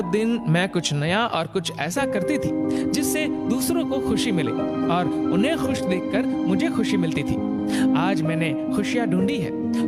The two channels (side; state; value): both; identical; correlation 1.00